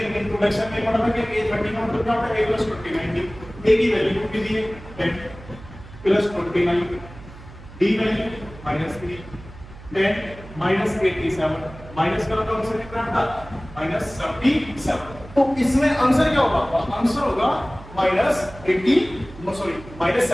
इंट्रोडक्शन में पढ़ा था कि a 30 का मतलब क्या होता है a प्लस 29। a की वैल्यू कितनी दी है 10 plus 29, d value -3, 10 minus 87 minus करो तो आंसर कितना आता -77। तो इसमें आंसर क्या होगा, आंसर होगा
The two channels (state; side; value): noise; right; hum, 17 dB below the sound